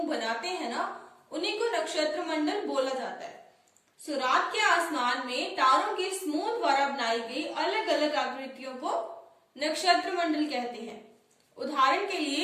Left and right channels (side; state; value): both; identical; correlation 1.00